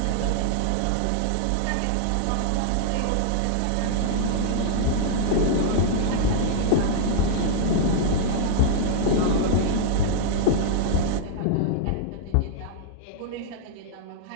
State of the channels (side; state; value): both; different; correlation -0.01